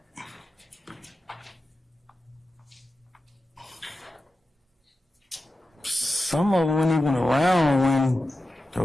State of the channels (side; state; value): both; normal; correlation 0.92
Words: Some of them weren't even around when the